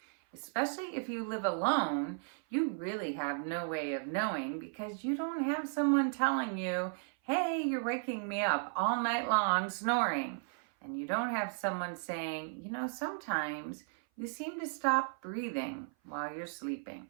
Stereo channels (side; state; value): left; silent; 54 dB below the other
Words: Especially if you live alone, you really have no way of knowing because you don't have someone telling you, hey, you're waking me up all night long snoring. And you don't have someone saying, sometimes you seem to stop breathing while you're sleeping.